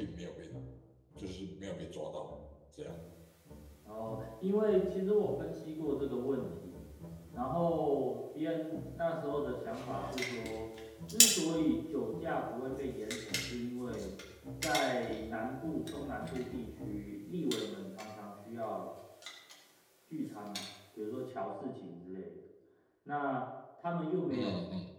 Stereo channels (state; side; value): identical; both; correlation 1.00